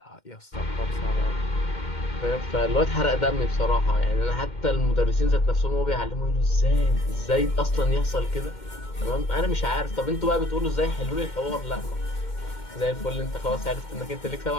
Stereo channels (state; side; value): late; right; 2.1 ms